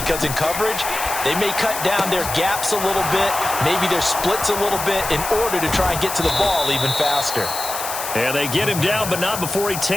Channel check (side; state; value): left; noise; hiss, 6 dB below the sound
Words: in coverage, they may cut down their gaps a little bit, maybe their splits a little bit in order to try and get to the ball even faster. And they get him down, but not before he